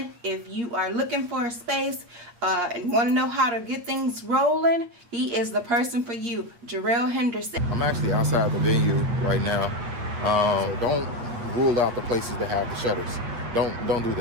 If you are looking for a space and want to know how to get things rolling, he is the person for you, Jarrell Henderson. I'm actually outside the venue right now. Don't rule out the places that have the shutters. Don't do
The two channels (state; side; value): late; left; 8.5 ms